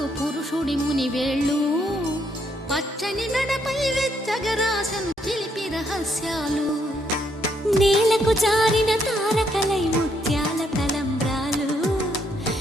పురుషుడి ముని వేళ్ళు పచ్చని నడపై వెచ్చగరాసను చిలిపి రహస్యాలు నేలకు జారిన తారకలై ముత్యాల తలంబ్రాలు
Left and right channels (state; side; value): normal; both; correlation 0.73